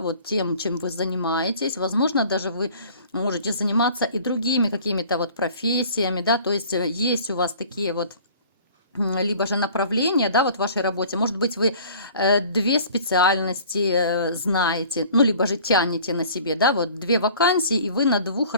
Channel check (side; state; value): both; inverted; correlation -0.49